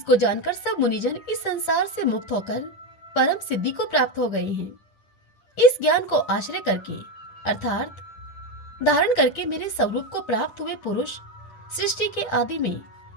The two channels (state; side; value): late; right; 10 ms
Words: जानकर सब मुनिजन इस संसार से मुक्त होकर परम सिद्धि को प्राप्त हो गए हैं। इस ज्ञान को आश्रय करके अर्थात धारण करके मेरे स्वरूप को प्राप्त हुए पुरुष सृष्टि के आदि में